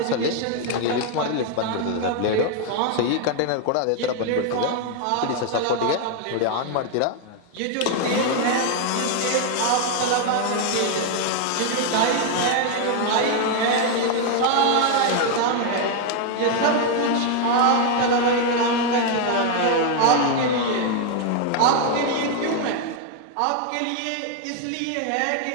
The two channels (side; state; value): both; different; correlation 0.01